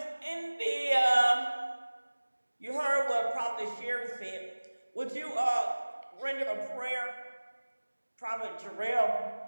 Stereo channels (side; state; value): both; inverted; correlation -1.00